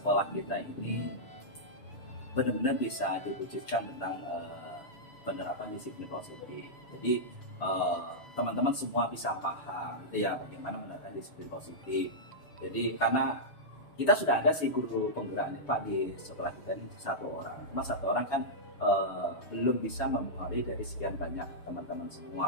kita ini benar-benar bisa diwujudkan tentang penerapan disiplin positif. Jadi teman-teman semua bisa paham gitu ya, bagaimana menerapkan disiplin positif. Jadi karena kita sudah ada sih guru penggerak Pak di sekolah kita ini satu orang, cuma satu orang kan belum bisa mempengaruhi dari sekian banyak teman-teman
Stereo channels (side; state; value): right; late; 6.9 ms